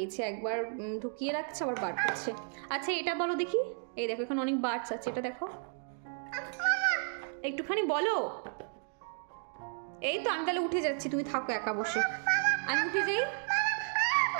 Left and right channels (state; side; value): silent; left; 56 dB below the other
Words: একবার ঢুকিয়ে রাখছে আবার বার করছে। আচ্ছা এটা বলো দেখি, এই দেখো এখানে অনেক বার্ডস আছে, এটা দেখো, একটুখানি বলো। এই তো আমি তাহলে উঠে যাচ্ছি, তুমি থাকো একা বসে, আমি উঠে যাই।